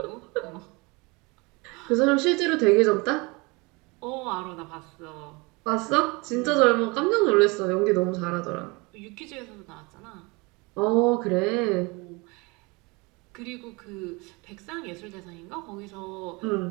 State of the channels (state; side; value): quieter; left; 26.6 dB